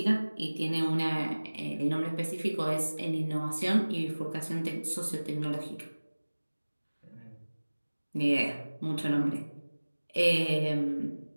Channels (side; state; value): both; inverted; correlation -1.00